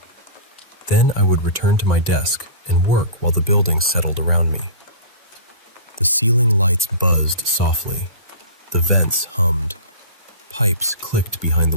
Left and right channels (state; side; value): inverted; both; correlation -0.34